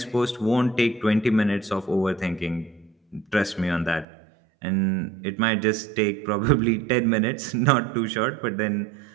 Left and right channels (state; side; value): drops out; left; at 4.0 s